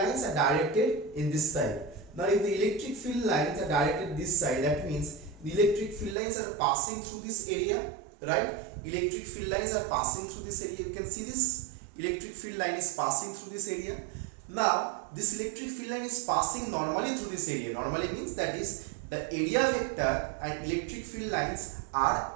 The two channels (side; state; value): left; drops out; at 6.2 s